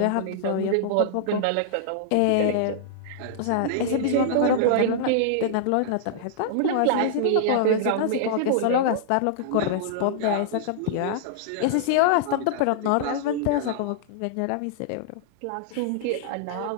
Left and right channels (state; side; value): different; both; correlation -0.01